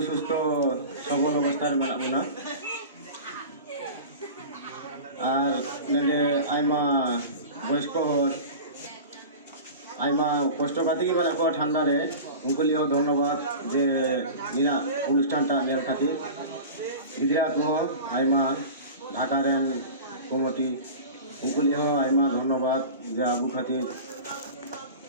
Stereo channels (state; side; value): inverted; both; correlation -0.34